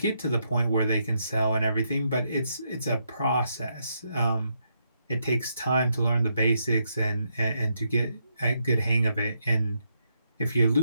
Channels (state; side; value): inverted; both; correlation -0.78